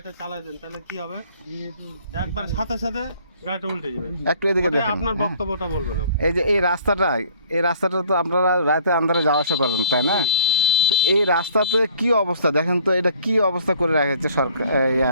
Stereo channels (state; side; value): inverted; both; correlation -0.56